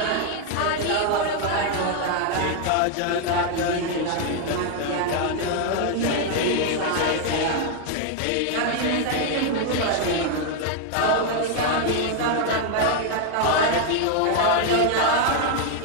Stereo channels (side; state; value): both; different; correlation 0.00